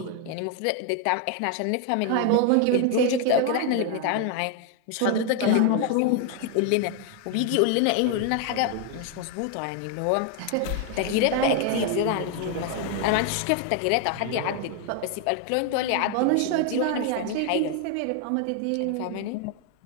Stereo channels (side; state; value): both; different; correlation 0.01